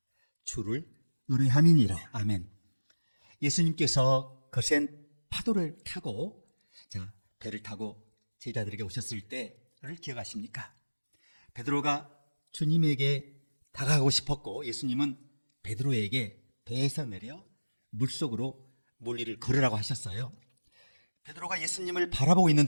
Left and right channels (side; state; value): both; inverted; correlation -1.00